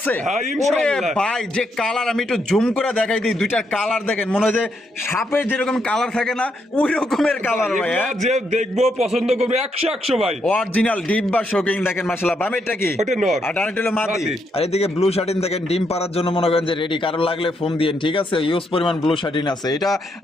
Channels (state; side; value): normal; both; correlation 0.78